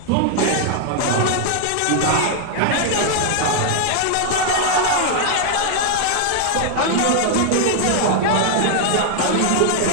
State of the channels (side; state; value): both; different; correlation 0.00